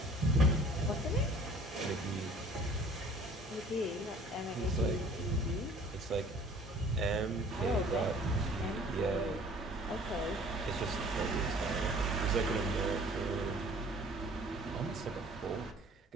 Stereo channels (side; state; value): both; normal; correlation 0.51